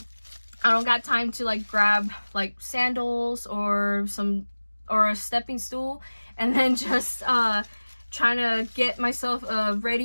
don't got time to like grab like sandals or a stepping stool and then just trying to get myself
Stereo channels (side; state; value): both; inverted; correlation -1.00